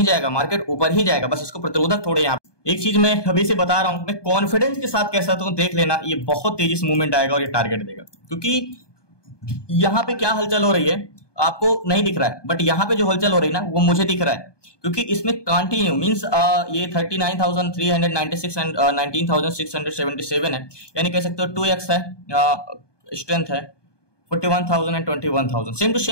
जाएगा, मार्केट ऊपर ही जाएगा, बस इसको प्रतिरोधक थोड़े यहाँ। एक चीज मैं अभी से बता रहा हूं, मैं कॉन्फिडेंस के साथ कह सकता हूं, देख लेना ये बहुत तेजी से मूवमेंट आएगा और ये टारगेट देगा, क्योंकि यहाँ पे क्या हलचल हो रही है आपको नहीं दिख रहा है, बट यहाँ पे जो हलचल हो रही है ना वो मुझे दिख रहा है, क्योंकि इसमें कंटिन्यू मींस ये 39,396 एंड 19,677 है, यानी कह सकते हो 2x है, स्ट्रेंथ है 41,000 and 21,000, same to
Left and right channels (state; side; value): late; right; 1.2 ms